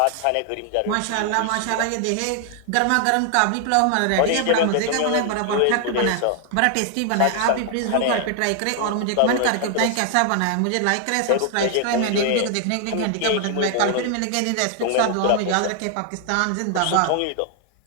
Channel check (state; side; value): different; both; correlation 0.00